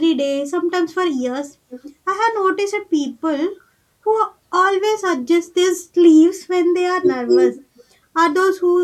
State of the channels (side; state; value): both; identical; correlation 1.00